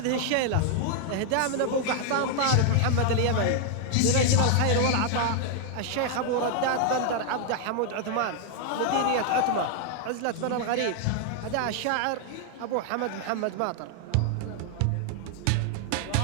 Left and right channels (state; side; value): different; both; correlation 0.00